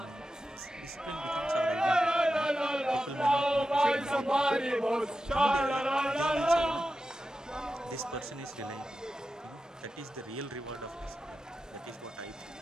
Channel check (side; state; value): both; normal; correlation 0.91